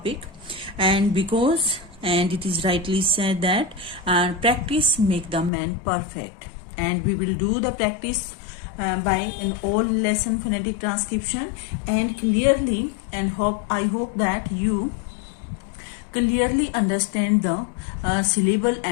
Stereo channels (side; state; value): right; drops out; at 5.5 s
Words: and it is rightly said that practice make the man perfect, and we will do the practice by an all lesson phonetic transcription and clearly, and I hope that you clearly understand the syllable